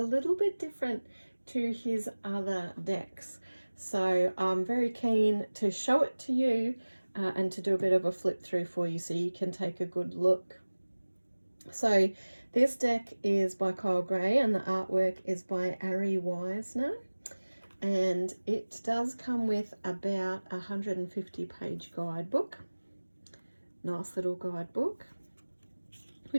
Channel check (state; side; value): inverted; both; correlation -1.00